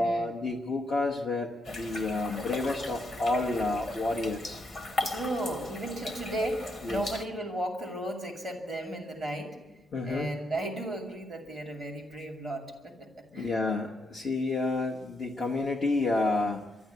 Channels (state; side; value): normal; both; correlation 0.78